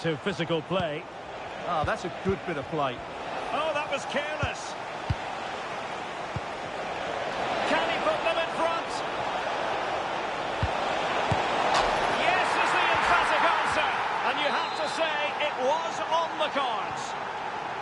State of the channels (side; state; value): both; identical; correlation 1.00